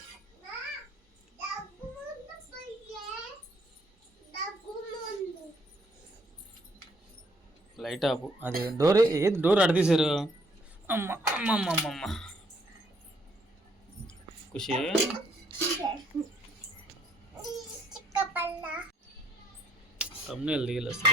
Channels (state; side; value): normal; both; correlation 0.67